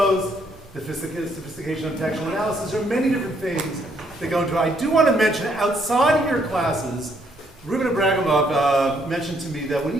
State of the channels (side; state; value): both; normal; correlation 0.70